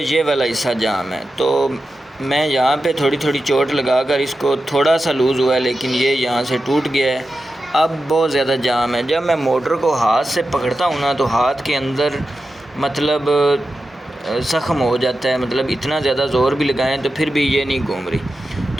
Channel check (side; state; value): both; normal; correlation 0.91